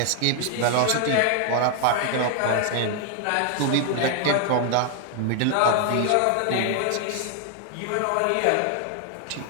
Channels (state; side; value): different; both; correlation 0.00